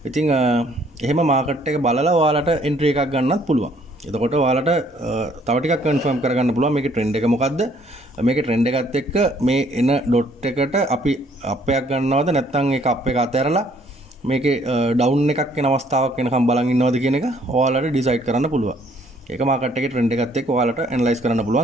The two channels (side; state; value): both; normal; correlation 0.63